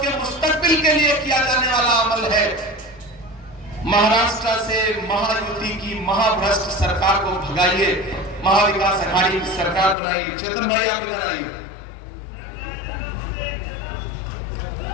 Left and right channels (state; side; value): drops out; right; at 10.0 s